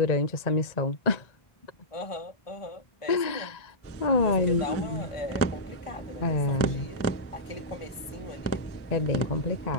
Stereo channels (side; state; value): right; late; 1.5 ms